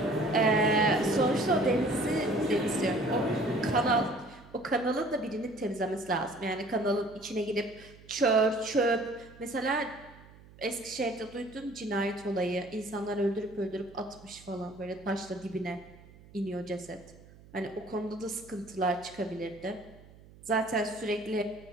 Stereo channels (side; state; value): right; noise; hum, 22 dB below the sound